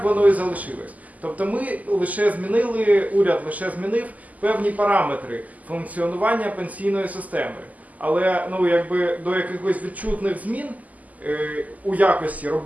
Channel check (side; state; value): left; late; 0.077 ms